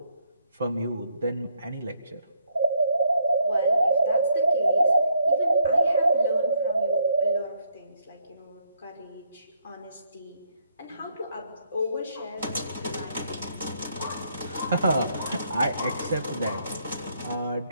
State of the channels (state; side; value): inverted; both; correlation -0.72